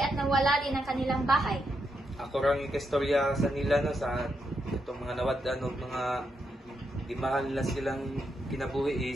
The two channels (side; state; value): both; normal; correlation 0.82